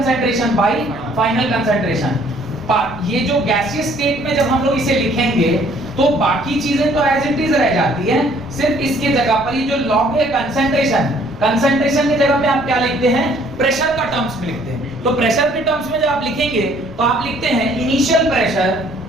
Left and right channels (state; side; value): noise; left; rumble, 19 dB below the sound